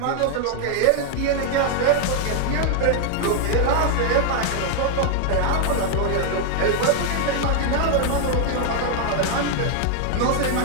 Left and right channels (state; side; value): different; both; correlation 0.00